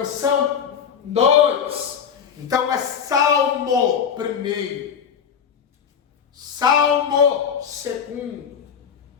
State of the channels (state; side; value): quieter; right; 7.4 dB